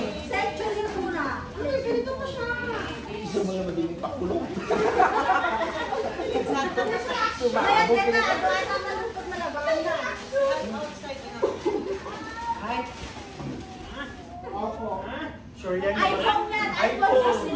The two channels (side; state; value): both; identical; correlation 1.00